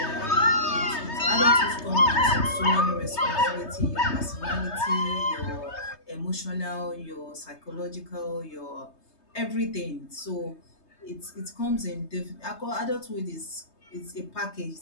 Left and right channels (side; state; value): right; late; 3.2 ms